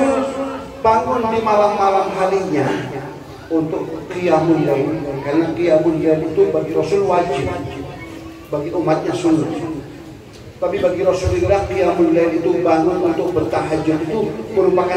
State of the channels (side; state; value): both; identical; correlation 1.00